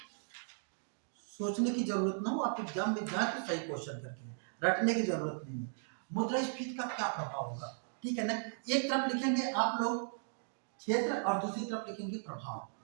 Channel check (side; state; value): left; silent; digital silence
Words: सोचने की जरूरत ना हो, आप एग्जाम में जाए तो सही क्वेश्चन करके, रटने की जरूरत नहीं है। मुद्रा स्फीति का क्या प्रभाव होगा, ठीक है ना। एक तरफ लिखेंगे आप लोग क्षेत्र और दूसरी तरफ लिखेंगे प्रभाव,